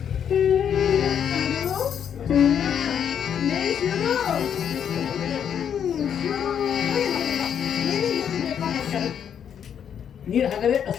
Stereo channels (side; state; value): right; quieter; 8.5 dB